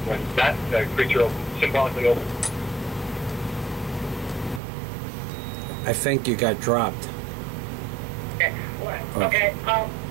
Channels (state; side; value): drops out; left; at 4.6 s